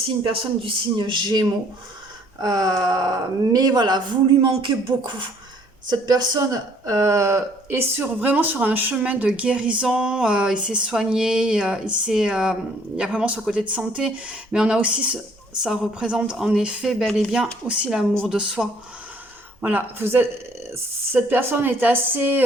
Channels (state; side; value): normal; both; correlation 0.61